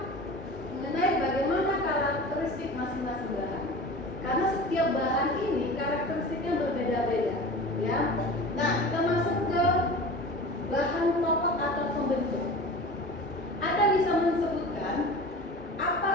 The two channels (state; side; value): normal; both; correlation 0.35